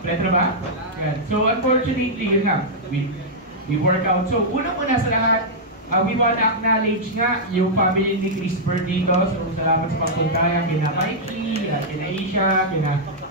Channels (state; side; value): normal; both; correlation -0.08